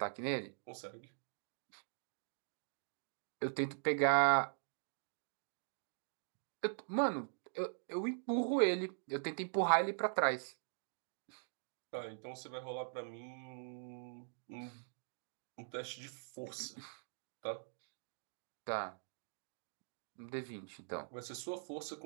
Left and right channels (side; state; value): left; silent; digital silence